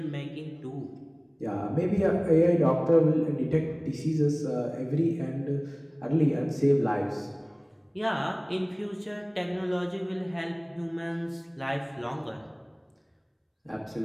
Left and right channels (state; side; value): identical; both; correlation 1.00